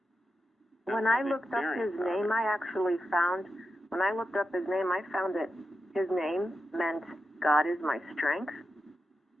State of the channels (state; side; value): normal; both; correlation 0.88